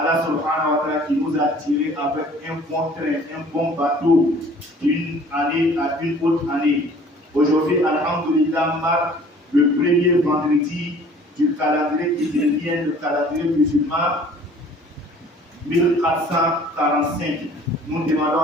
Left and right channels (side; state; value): both; normal; correlation 0.51